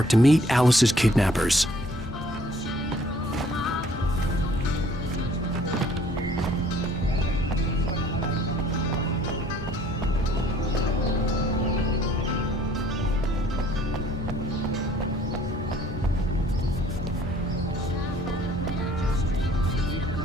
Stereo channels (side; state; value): both; normal; correlation 0.58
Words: to meet Alice's kidnappers.